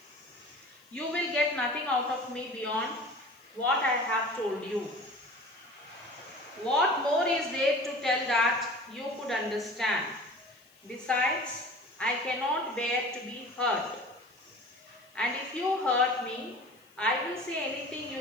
you will get nothing out of me beyond what I have told you. What more is there to tell that you could understand? Besides, I cannot bear to be hurt. And if you hurt me, I will say anything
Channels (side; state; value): left; noise; hiss, 30 dB below the sound